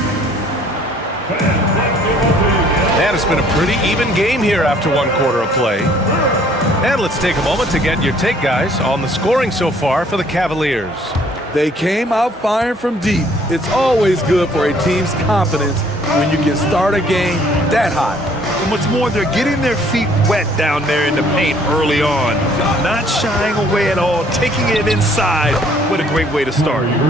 And it's been a pretty even game here after one quarter of play. And let's take a moment to get your take, guys, on the scoring so far for the Cavaliers. They came out firing from deep. It's always good for a team's confidence when you can start a game that hot. And what's more, they're getting their feet wet down there in the paint early on. Not shying away at all, taking it inside. What a great way to start.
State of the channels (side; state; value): both; normal; correlation 0.60